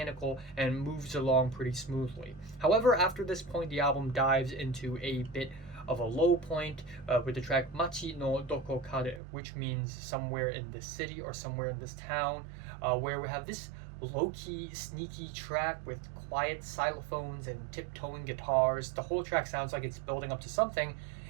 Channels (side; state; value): left; drops out; at 9.2 s